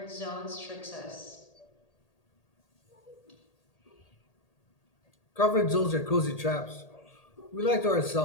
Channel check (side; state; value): right; late; 1.8 ms